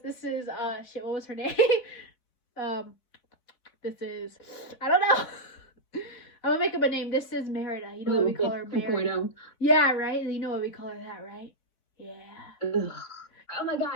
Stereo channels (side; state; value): right; late; 4.1 ms